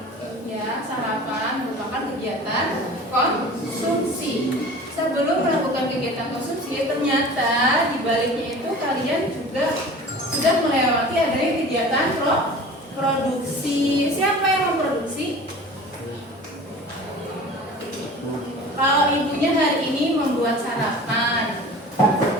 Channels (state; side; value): normal; both; correlation 0.40